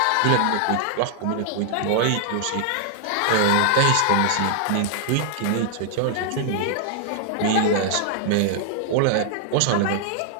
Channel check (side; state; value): both; different; correlation 0.00